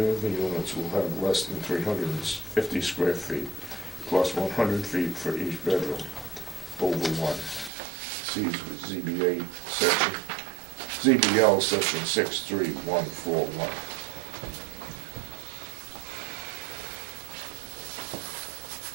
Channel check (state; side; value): drops out; left; at 7.7 s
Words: of the units will have less than 350 square feet, plus 100 feet for each bedroom, over 1. See ZBL section 63141.